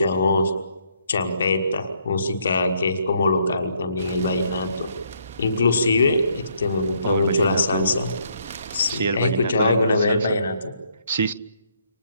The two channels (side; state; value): both; inverted; correlation -0.70